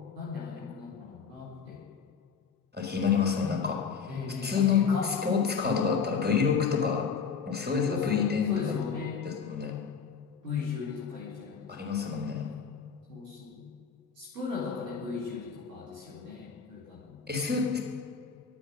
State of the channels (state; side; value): quieter; right; 6.1 dB